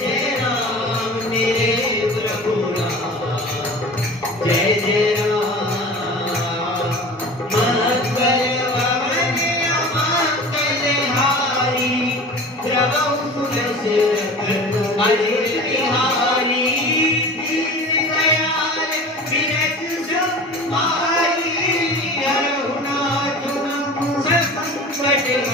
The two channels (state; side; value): normal; both; correlation 0.38